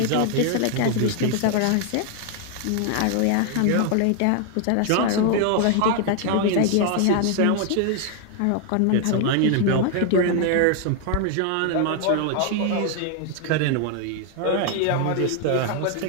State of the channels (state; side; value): different; both; correlation 0.00